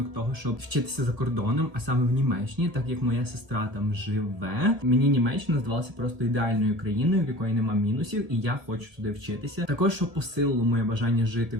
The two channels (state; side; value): late; left; 1.7 ms